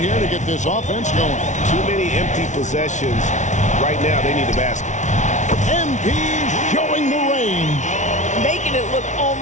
here to get this offense going. Too many empty possessions. Right now, they need a basket. MP showing the range. Making it look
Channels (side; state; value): right; late; 0.35 ms